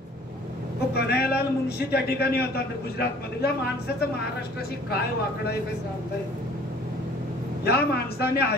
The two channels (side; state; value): both; normal; correlation 0.52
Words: तो कन्हैयालाल मुंशी त्या ठिकाणी होता गुजरातमध्ये. या माणसाचं महाराष्ट्राशी काय वाकडं आहे काय सांगता येईल. या माणसाने